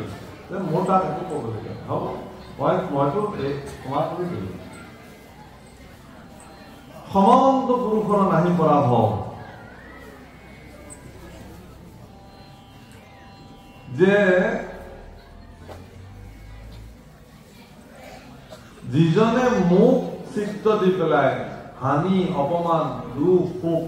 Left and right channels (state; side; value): identical; both; correlation 1.00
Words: যে মোৰ তাত একো ক'বলগীয়া হ'ব, মইতো ক্ষমা কৰি দিলো। সমন্ত পুৰুষৰ নাহি পৰাভৱ, যে যিজনে মোক চিত্ত দি পেলাই হানি, অপমান, দুখ, সুখ